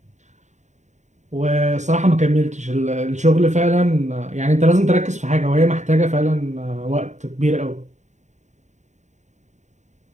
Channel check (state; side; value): late; left; 0.34 ms